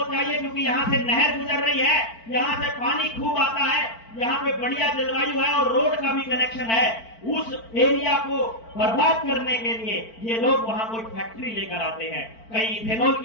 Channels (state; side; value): late; right; 4.5 ms